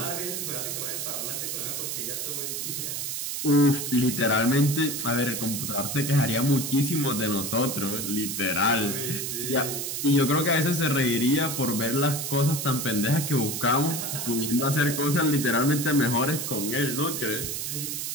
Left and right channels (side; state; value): right; noise; hiss, 3 dB below the sound